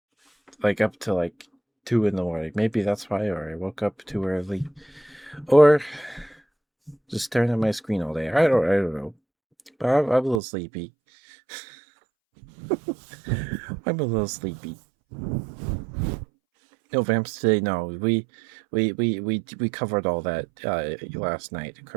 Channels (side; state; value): left; drops out; at 10.4 s